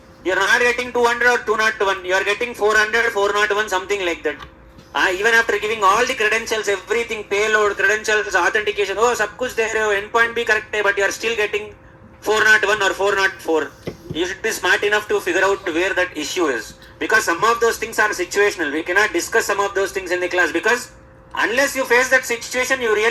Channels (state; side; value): identical; both; correlation 1.00